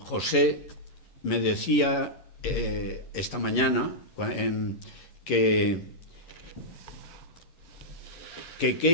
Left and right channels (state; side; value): late; right; 11 ms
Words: José, me decía esta mañana que